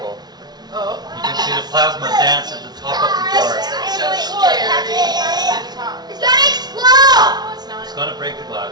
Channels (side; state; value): left; late; 0.19 ms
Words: Oh. You can see the plasma dance at the top of the jar. So scary. It's gonna explode! No, it's not. It's going to break the